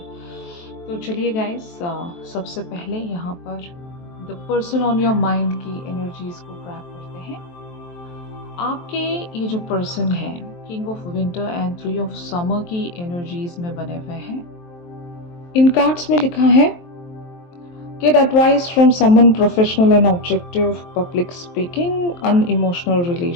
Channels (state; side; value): late; right; 23 ms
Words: तो चलिए गाइस, सबसे पहले यहाँ पर the person on your mind की एनर्जीज को ग्रैब करते हैं। आपके ये जो पर्सन है king of winter and 3 of summer की एनर्जीज में बने हुए हैं। इन कार्ड्स में लिखा है get advice from someone professional and objective, public speaking, unemotional